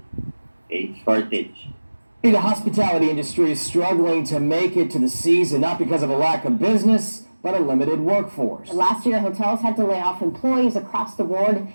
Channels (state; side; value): inverted; both; correlation -1.00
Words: The hospitality industry is struggling to make it to the season, not because of a lack of business, but a limited workforce. Last year, hotels had to lay off employees across the board.